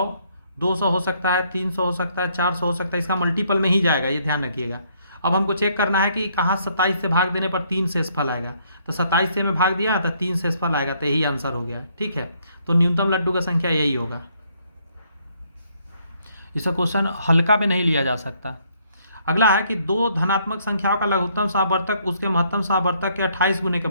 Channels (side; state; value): both; inverted; correlation -0.68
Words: 200 हो सकता है, 300 हो सकता है, 400 हो सकता है, इसका मल्टीपल में ही जाएगा, ये ध्यान रखिएगा। अब हमको चेक करना है कि कहाँ 27 से भाग देने पर 3 शेषफल आएगा। तो 27 से में भाग दिया तो 3 शेषफल आएगा, तो यही आंसर हो गया, ठीक है। तो न्यूनतम लड्डू का संख्या यही होगा। इसका क्वेश्चन हल्का में नहीं लिया जा सकता। अगला है कि दो धनात्मक संख्याओं का लघुत्तम समावर्तक उसके महत्तम समावर्तक के 28 गुने के